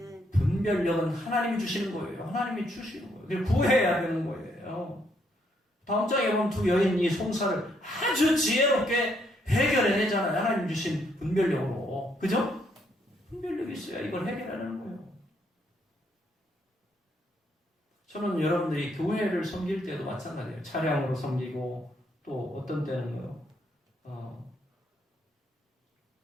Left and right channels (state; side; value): normal; both; correlation 0.73